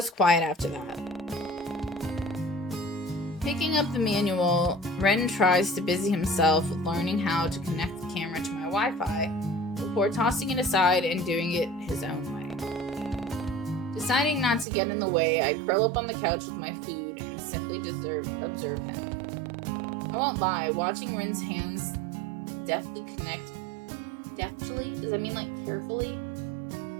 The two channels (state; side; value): drops out; left; at 14.7 s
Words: quiet after that. Picking up the manual, Ren tries to busy himself with learning how to connect the camera to my Wi-Fi before tossing it aside and doing it his own way. Deciding not to get in the way, I curl up on the couch with my food and simply observe him. I won't lie, watching Ren's hands deftly? Does that mean like carefully?